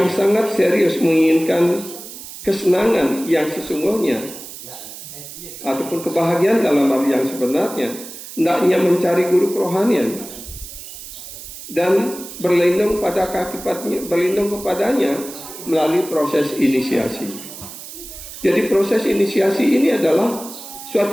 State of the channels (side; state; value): right; noise; hiss, 13 dB below the sound